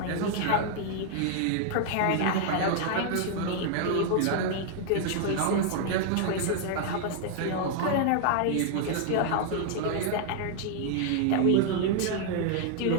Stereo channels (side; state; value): both; different; correlation 0.00